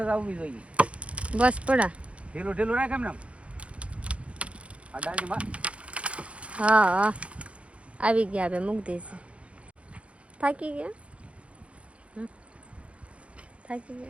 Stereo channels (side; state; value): left; late; 0.062 ms